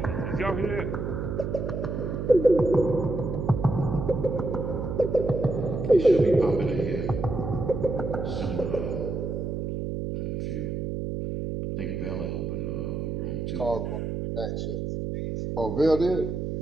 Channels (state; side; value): noise; right; hum, 3 dB below the sound